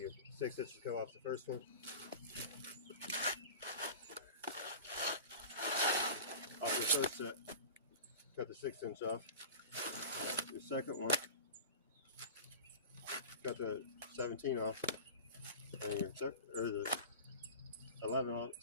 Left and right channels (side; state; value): both; inverted; correlation -0.34